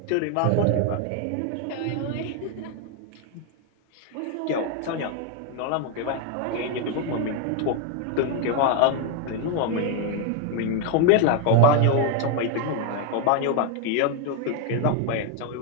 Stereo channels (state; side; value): different; both; correlation 0.01